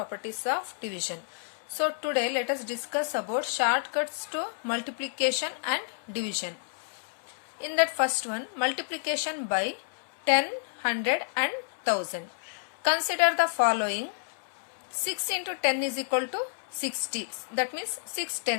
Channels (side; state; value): right; silent; 58 dB below the other